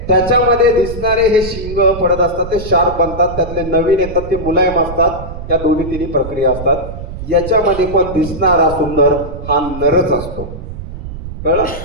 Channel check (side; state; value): right; noise; rumble, 10 dB below the sound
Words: त्याच्यामध्ये दिसणारे हे शिंग पडत असतात, ते शार्प बनतात. त्यातले नवीन येतात ते मुलायम असतात. या 2-3 प्रक्रिया असतात. याच्यामध्ये पण दिसणारा सुंदर हा नरच असतो. कळलं?